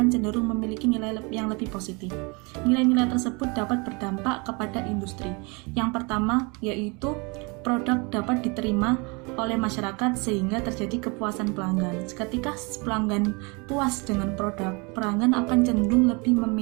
cenderung memiliki nilai yang lebih positif. Nilai-nilai tersebut dapat berdampak kepada industri. Yang pertama yaitu produk dapat diterima oleh masyarakat sehingga terjadi kepuasan pelanggan. Ketika pelanggan puas dengan produk, pelanggan akan cenderung lebih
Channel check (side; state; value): left; quieter; 29.5 dB